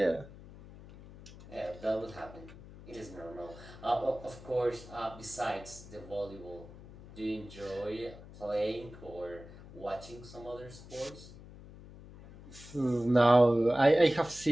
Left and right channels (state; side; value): noise; left; hum, 17 dB below the sound